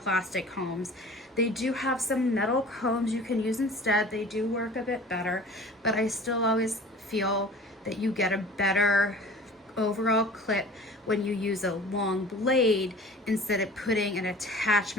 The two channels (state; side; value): normal; both; correlation 0.43